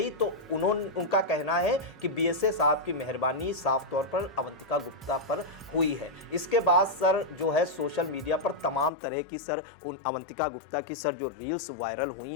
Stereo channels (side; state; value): right; drops out; at 8.9 s